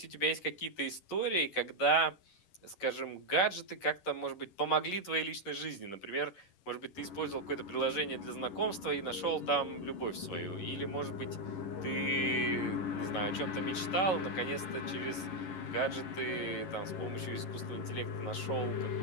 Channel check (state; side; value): late; right; 11 ms